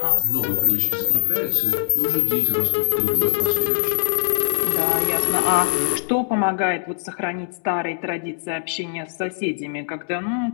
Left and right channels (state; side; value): silent; right; digital silence